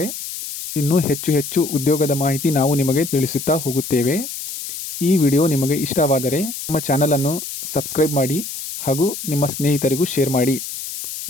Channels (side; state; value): left; noise; hiss, 8 dB below the sound